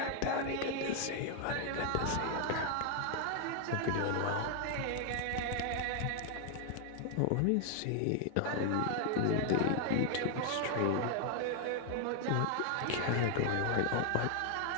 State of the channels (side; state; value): both; different; correlation 0.00